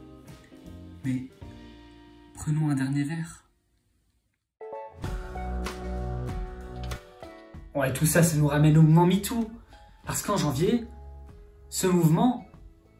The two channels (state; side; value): identical; both; correlation 1.00